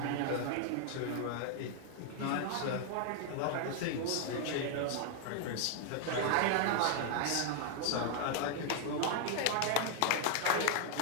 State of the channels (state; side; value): different; both; correlation 0.00